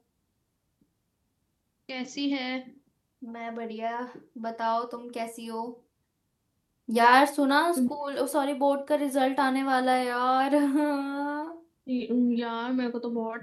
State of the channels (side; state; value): both; identical; correlation 1.00